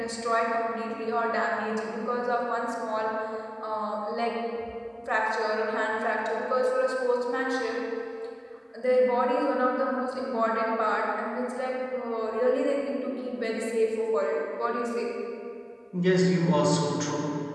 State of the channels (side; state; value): both; identical; correlation 1.00